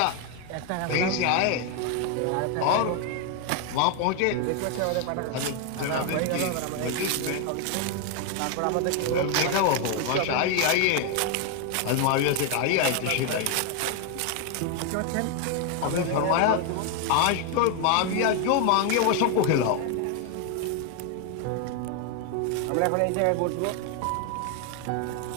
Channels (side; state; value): both; different; correlation 0.01